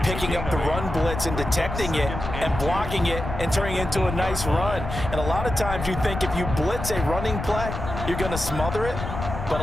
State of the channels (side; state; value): left; noise; rumble, 6 dB below the sound